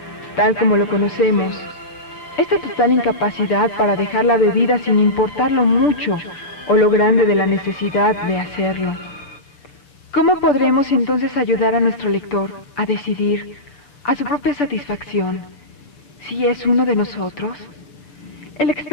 Tal como lo conocemos, esta total incapacidad para dejar la bebida sin importar lo mucho o lo grande de la necesidad de hacerlo. ¿Cómo podremos entonces ayudar a nuestro lector a decidir, a su propia satisfacción, si es uno de nosotros? El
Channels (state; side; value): late; right; 6.9 ms